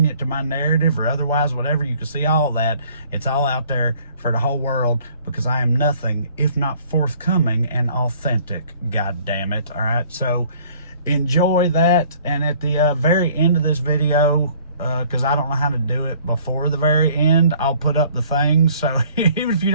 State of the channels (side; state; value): both; inverted; correlation -0.56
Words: to my narrative or otherwise, whatever. You can see all that. It's all out there for the whole world, because I am nothing if not forthcoming and authentic, god damn it. All right, so enjoy that. And at the very end of this video, because I don't know how to do it before the very end, I'll put up the things. So even if you